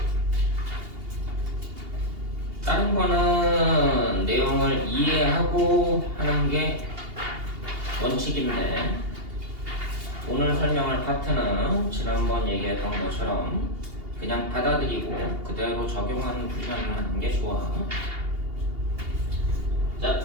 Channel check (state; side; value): late; left; 2.8 ms